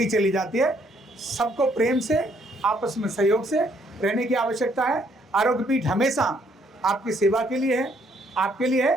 चली जाती है। सबको प्रेम से, आपस में सहयोग से रहने की आवश्यकता है। आरोग्य पीठ हमेशा आपकी सेवा के लिए है, आपके लिए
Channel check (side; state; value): both; normal; correlation 0.68